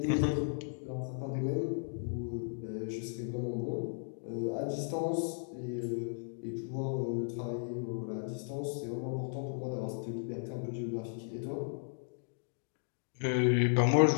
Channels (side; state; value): right; silent; digital silence